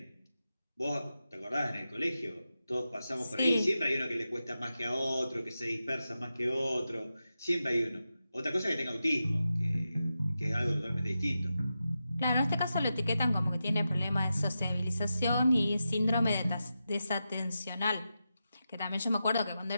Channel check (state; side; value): inverted; both; correlation -0.90